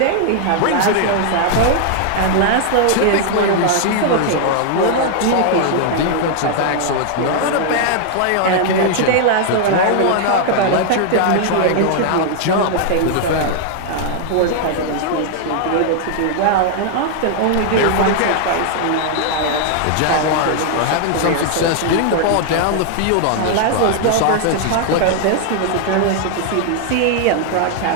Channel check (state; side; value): different; both; correlation 0.00